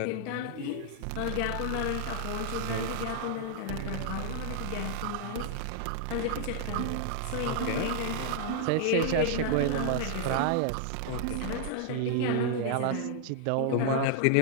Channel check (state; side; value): different; both; correlation 0.00